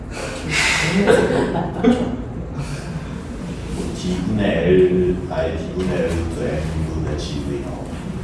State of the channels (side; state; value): both; identical; correlation 1.00